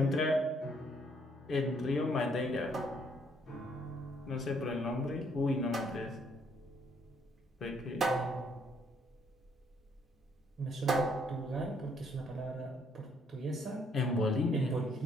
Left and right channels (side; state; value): both; normal; correlation 0.68